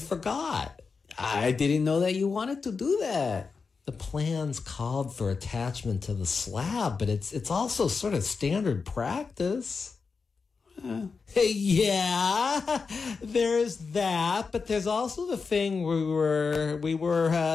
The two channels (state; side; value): quieter; right; 4.9 dB